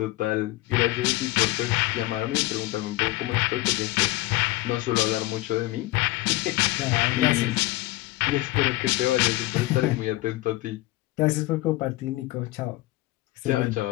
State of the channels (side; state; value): right; quieter; 18.7 dB